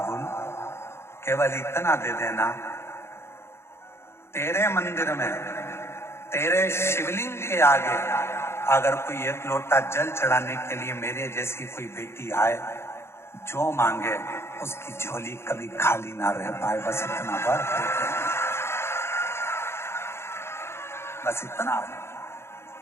केवल इतना दे देना, तेरे मंदिर में, तेरे शिवलिंग के आगे अगर कोई 1 लोटा जल चढ़ाने के लिए मेरे जैसी कोई बेटी आए, जो मांगे उसकी झोली कभी खाली ना रह पाए। बस इतना बार, बस इतना।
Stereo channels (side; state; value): right; late; 0.12 ms